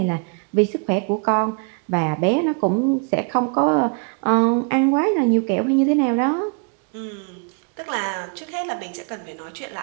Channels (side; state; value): left; quieter; 38.2 dB